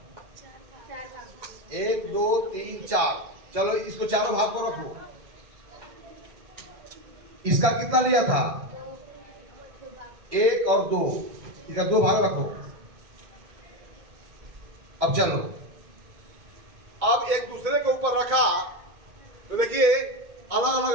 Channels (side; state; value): left; late; 2.1 ms